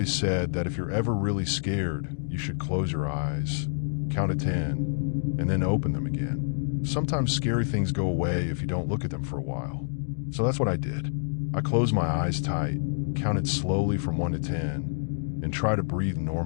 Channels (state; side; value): silent; right; digital silence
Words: said that if you're ever really scared, you should close your eyes, count to 10, and then open them again. Sometimes scary things go away if you don't look at them for a while. So that's what I did. I closed my eyes tight, counted slowly from 1 to 10, and tried to breathe